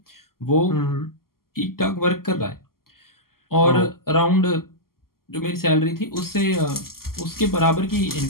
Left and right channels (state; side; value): late; right; 0.92 ms